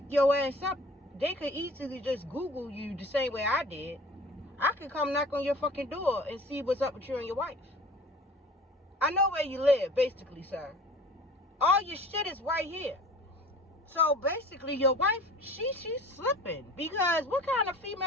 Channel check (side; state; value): both; normal; correlation 0.44